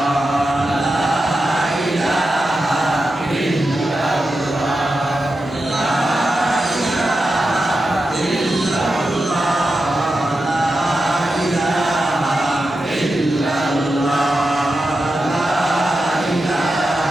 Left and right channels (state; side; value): normal; both; correlation 0.90